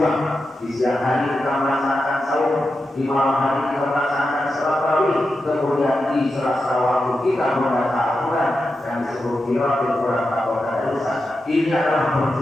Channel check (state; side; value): normal; both; correlation 0.89